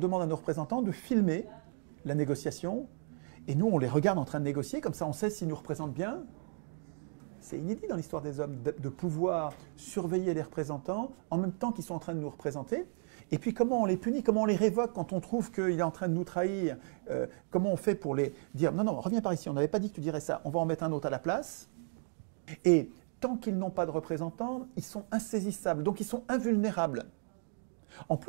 à nos représentants de filmer la négociation? Et nous, on les regarde en train de négocier, comme ça on sait s'ils nous représentent bien. C'est inédit dans l'histoire des hommes de pouvoir surveiller les représentants en même temps qu'ils sont en train de nous représenter. Et puis comment on les punit, comment on les révoque quand on trouve qu'il est en train de nous trahir, comment on fait pour les dire « Non, non, reviens par ici, on n'avait pas dit que tu dirais ça, on va en mettre un autre à la place ». Et tant qu'ils n'ont pas de représentants, ils sont insaisissables, donc ils sont invulnérables. En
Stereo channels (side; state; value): left; silent; 55 dB below the other